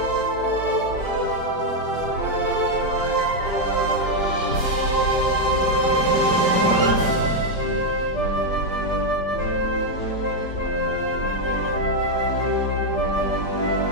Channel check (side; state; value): right; late; 5.1 ms